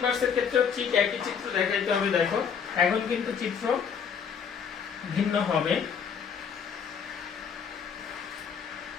এর ক্ষেত্রে ঠিক একই চিত্র দেখাইতে হবে। দেখো এখন কিন্তু চিত্র ভিন্ন হবে।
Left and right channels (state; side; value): quieter; right; 7.0 dB